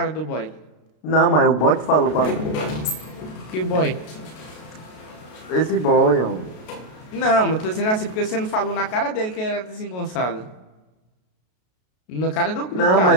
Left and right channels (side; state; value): right; late; 33 ms